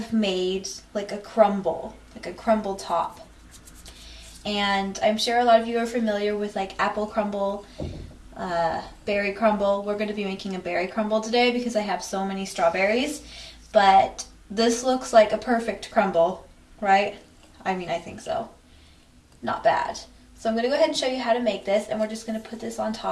made like a crumble top. And I'm sure a lot of you are familiar with like apple crumble, berry crumble. We're going to be making a berry crumble today because I have so many strawberries, but this looks like a perfect crumble, right? I mean, I think so. Not bad. So I'm going to go ahead and show you how to make this, and we're just going to put this on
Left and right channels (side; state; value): both; identical; correlation 1.00